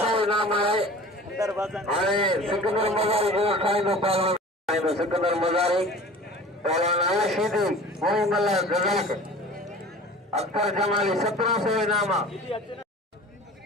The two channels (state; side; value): normal; both; correlation 0.42